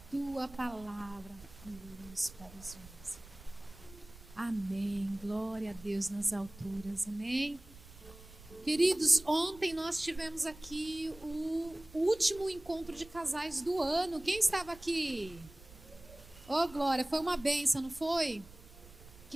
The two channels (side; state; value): right; noise; rumble, 20 dB below the sound